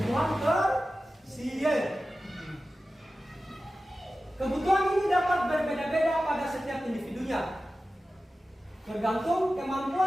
tersier. Kebutuhan ini dapat berbeda-beda pada setiap individunya, tergantung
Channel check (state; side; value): normal; both; correlation 0.94